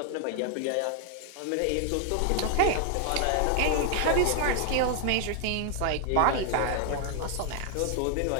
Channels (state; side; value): different; both; correlation 0.00